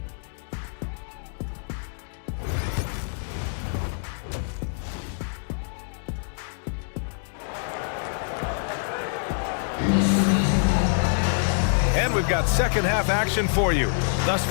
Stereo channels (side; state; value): right; silent; digital silence